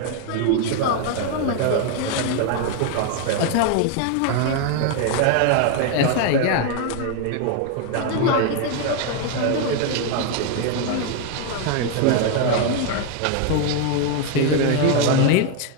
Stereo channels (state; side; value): different; both; correlation 0.01